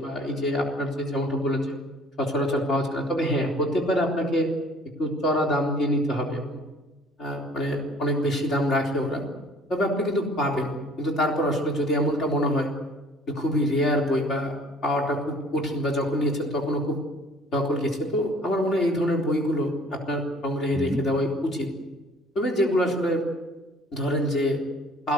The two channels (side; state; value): both; normal; correlation 0.53